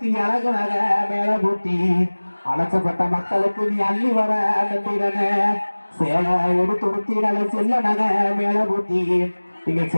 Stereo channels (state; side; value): inverted; both; correlation -1.00